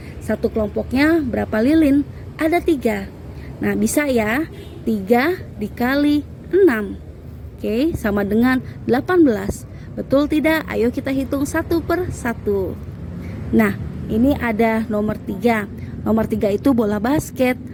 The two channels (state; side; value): identical; both; correlation 1.00